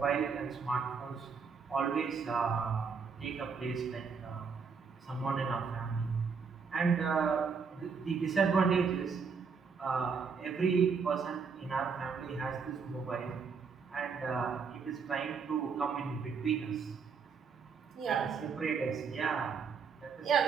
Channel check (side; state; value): left; quieter; 5.6 dB